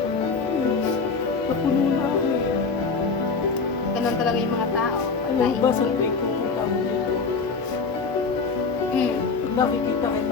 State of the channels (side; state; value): right; quieter; 4.7 dB